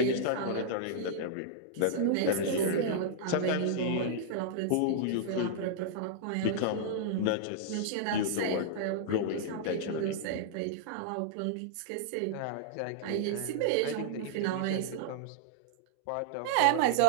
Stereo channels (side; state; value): both; different; correlation -0.01